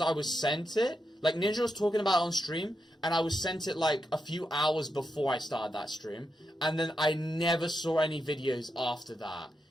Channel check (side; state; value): both; normal; correlation 0.85